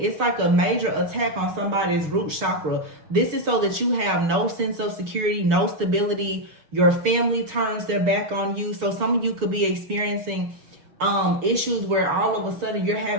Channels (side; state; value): left; late; 6.5 ms